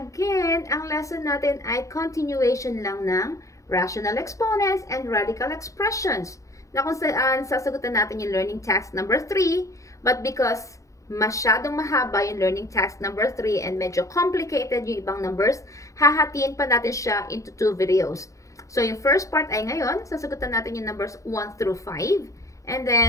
ang lesson natin ay continuation lang ng rational exponents and radical expressions na kung saan sasagutan natin yung learning task number 3 but because masyadong mahaba yung learning task number 3 and medyo complicated yung ibang numbers, hahatiin pa natin siya into 2 videos. So yung first part ay ngayon, sasagutan natin yung numbers 1 through 5 and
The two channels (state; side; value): late; right; 0.15 ms